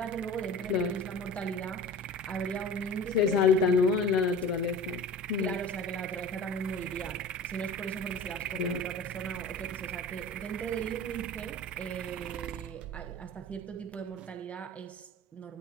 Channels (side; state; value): both; normal; correlation 0.38